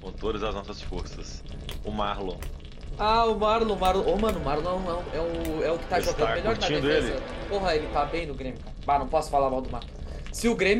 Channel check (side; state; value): both; identical; correlation 1.00